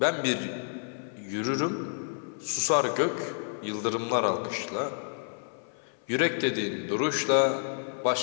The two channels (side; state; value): right; silent; 58 dB below the other